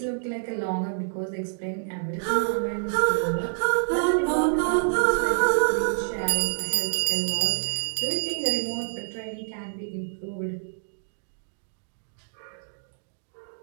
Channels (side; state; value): left; silent; digital silence